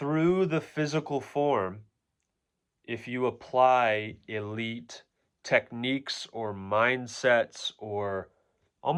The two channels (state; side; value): identical; both; correlation 1.00